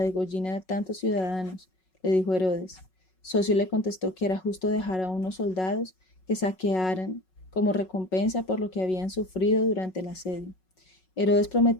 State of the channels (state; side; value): late; right; 5.4 ms